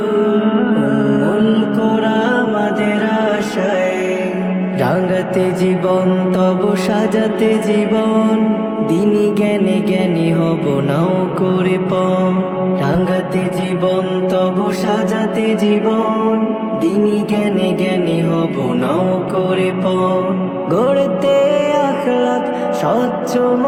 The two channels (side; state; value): both; identical; correlation 1.00